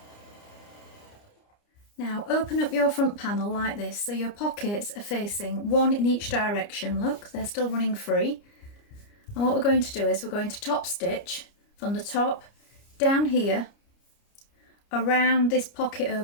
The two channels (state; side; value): late; right; 29 ms